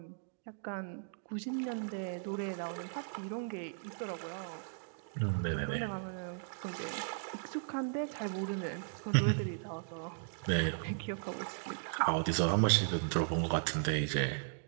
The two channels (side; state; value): left; silent; digital silence